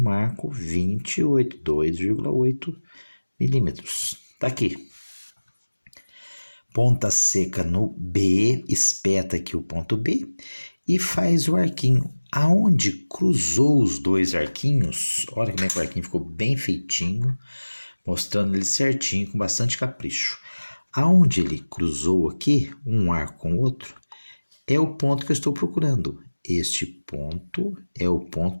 28, 2,8 milímetros. Tá aqui. Ponta seca no B, espeta aqui o ponto B e faz o arquinho. Aonde cruzou os dois arquinhos, olha como é que o arquinho ficou bem feitinho, mostrando ele certinho, com bastante capricho. Aonde ele cruzou aqui, um arco com o outro, é o ponto que eu estou procurando. Este ponto é o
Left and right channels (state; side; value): inverted; both; correlation -1.00